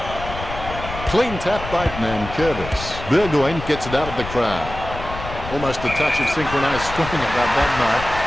Clean tap by Nankervis. Burgoyne gets it out of the crowd. Almost a touch of synchronized swimming about that mark.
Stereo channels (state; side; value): noise; left; rumble, 10 dB below the sound